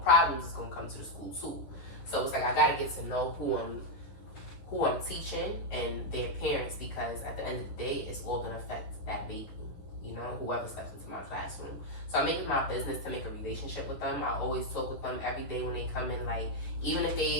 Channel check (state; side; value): late; right; 11 ms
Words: problems is gonna come to the school too. So it's like I gotta get to know who I'm teaching and their parents, because at the end of the day, it's all gonna affect that baby. you know, whoever steps into my classroom. So I make it my business to make a relationship with them. I always talk with them every day when they come in. Like, even if